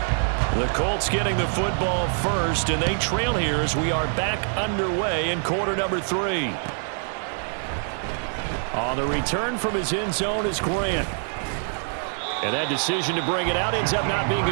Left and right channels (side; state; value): left; silent; 57 dB below the other